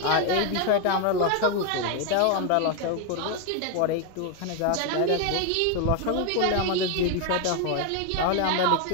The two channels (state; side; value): different; both; correlation 0.01